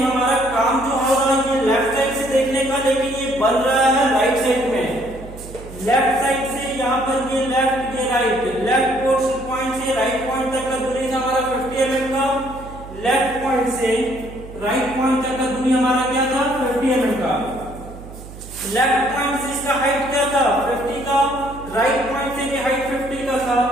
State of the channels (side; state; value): right; noise; hum, 15 dB below the sound